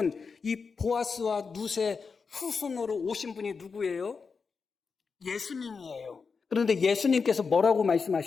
이 보아스와 룻의 후손으로 오신 분이 누구예요? 예수님이에요. 그런데 예수님께서 뭐라고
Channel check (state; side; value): quieter; right; 5.2 dB